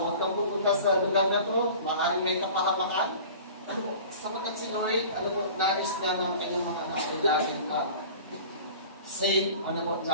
kang pupunta sa lugar na to, maaaring may kapahamakan. Ano po, sapagat si Lord, ano po, nais niya ng kanyang mga anak ay laging safe, ano po,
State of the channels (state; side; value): inverted; both; correlation -0.41